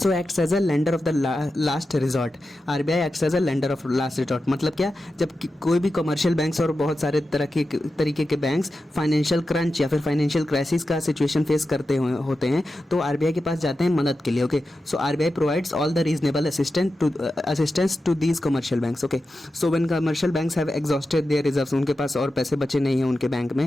acts as a lender of the last resort. RBI acts as a lender of last resort. मतलब क्या, जब कोई भी कमर्शियल बैंक्स और बहुत सारे तरीके के बैंक्स फाइनेंशियल क्रंच या फिर फाइनेंशियल क्राइसिस का सिचुएशन फेस करते होते हैं तो आरबीआई के पास जाते हैं मदद के लिए। Okay, RBI provides all the reasonable assistance to these commercial banks. Okay, when commercial banks have exhausted their reserves, उनके पास और पैसे बचे नहीं हैं उनके बैंक में,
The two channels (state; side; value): normal; both; correlation 0.91